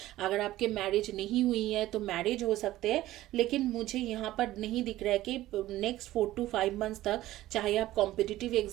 अगर आपके मैरिज नहीं हुई है तो मैरिज हो सकते हैं, लेकिन मुझे यहाँ पर नहीं दिख रहा है कि नेक्स्ट 4 to 5 मंथ्स तक, चाहे आप कॉम्पिटिटिव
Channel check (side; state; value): left; quieter; 15.5 dB